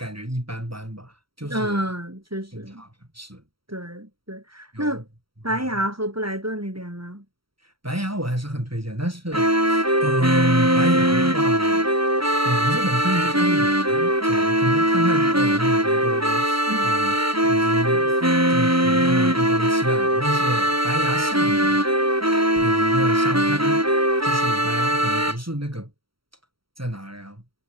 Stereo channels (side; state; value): left; late; 0.75 ms